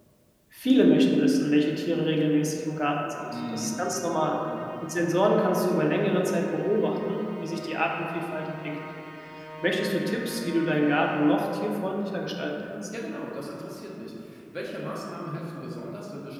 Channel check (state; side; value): identical; both; correlation 1.00